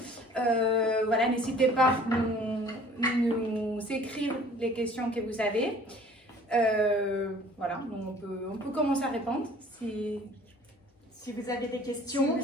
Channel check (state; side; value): normal; both; correlation 0.51